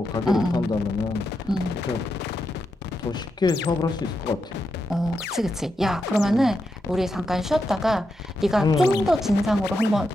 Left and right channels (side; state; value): both; normal; correlation 0.85